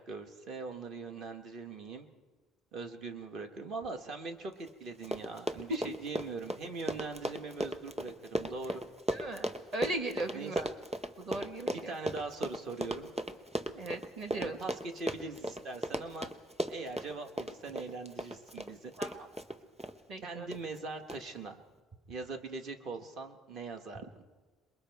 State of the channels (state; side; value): normal; both; correlation 0.65